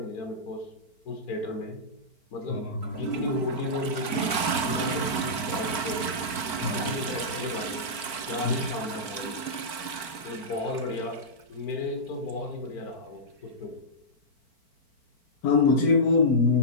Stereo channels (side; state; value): right; late; 4.5 ms